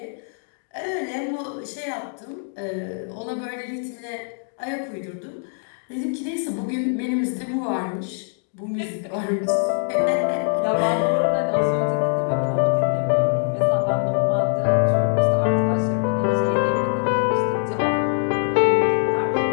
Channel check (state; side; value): silent; right; 63 dB below the other